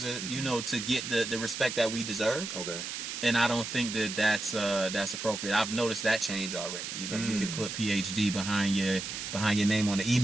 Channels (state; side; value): noise; right; hiss, 6 dB below the sound